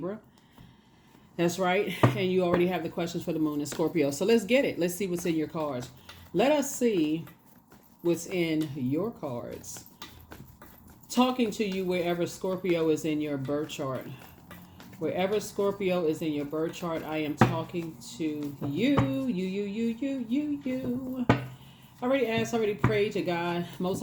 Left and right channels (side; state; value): both; identical; correlation 1.00